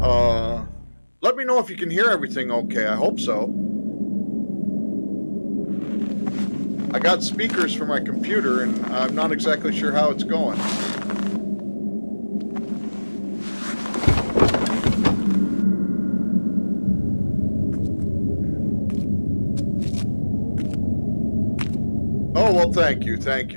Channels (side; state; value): both; inverted; correlation -1.00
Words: Let me know if you can hear everything okay. I hope so. I got speakers for my computer, and I'm not exactly sure how it's going. Oh, well, thank you. Thank